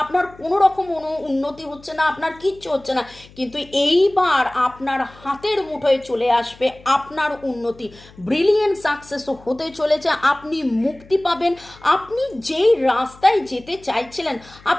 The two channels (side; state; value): left; noise; hum, 24 dB below the sound